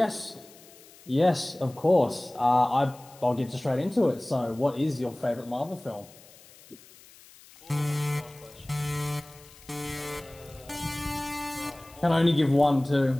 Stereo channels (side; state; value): left; noise; hiss, 23 dB below the sound